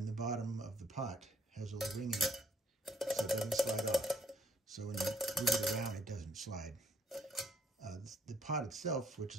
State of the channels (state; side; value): normal; both; correlation 0.65